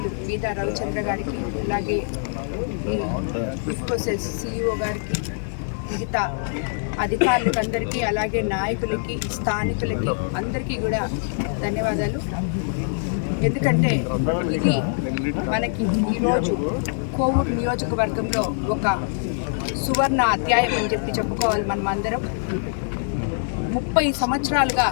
మీదా రవిచంద్ర గారికి, అలాగే ఇఫ్కోసెస్ సిఇఓ గారికి, మిగతా అధికారులకు అందరికీ, అలాగే నాయకులకి, స్థానికులకి అందరికీ కూడా ధన్యవాదాలు. ఎందుకంటే ఇది మనకి ఈరోజు కోవూరు నియోజకవర్గంలో ఒక సువర్ణ అధ్యాయం అని చెప్పి చెప్పుకోవాలి. మనం అందరం 30 సంవత్సరాలుగా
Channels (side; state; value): right; silent; 63 dB below the other